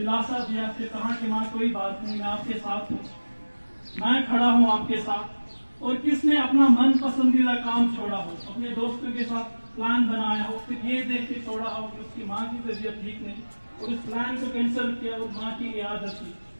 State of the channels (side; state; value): both; inverted; correlation -1.00